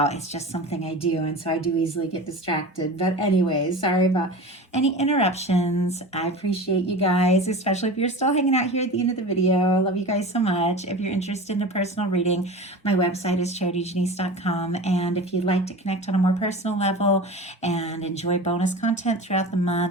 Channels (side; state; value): both; normal; correlation 0.33